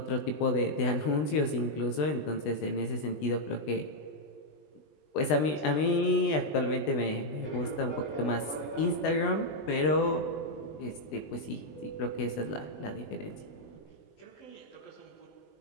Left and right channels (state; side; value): late; right; 20 ms